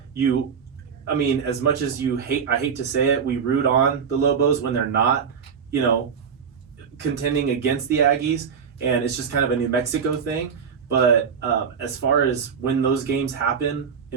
I mean, as much as I hate to say it, we root on the Lobos when they're not, contending against the Aggies, and it's just kind of a New Mexico thing. But as far as when those games happen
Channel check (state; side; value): quieter; left; 6.7 dB